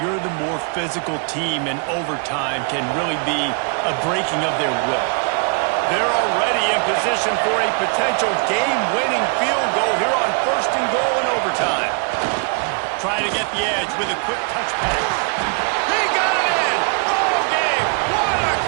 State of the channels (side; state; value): left; quieter; 38.3 dB